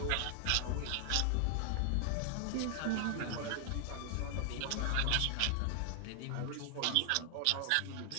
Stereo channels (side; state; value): both; different; correlation 0.00